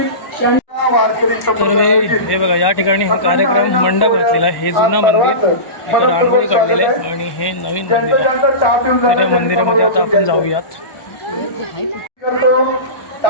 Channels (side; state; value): right; late; 1.1 ms